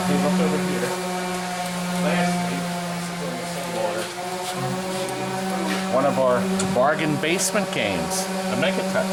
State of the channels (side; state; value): both; identical; correlation 1.00